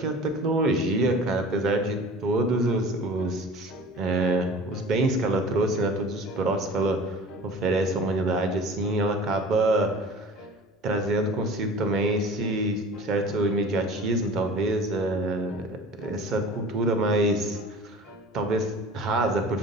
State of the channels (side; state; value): both; normal; correlation 0.41